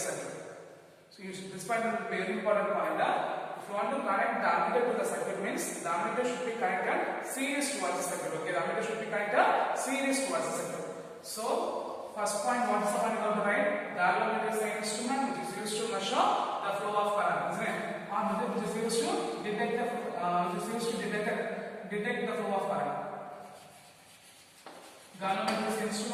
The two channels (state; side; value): identical; both; correlation 1.00